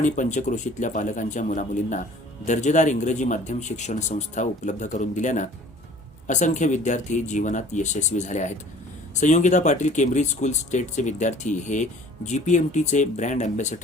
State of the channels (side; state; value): both; normal; correlation 0.50